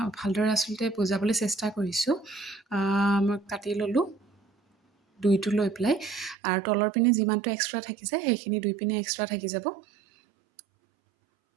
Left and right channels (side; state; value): left; drops out; at 6.4 s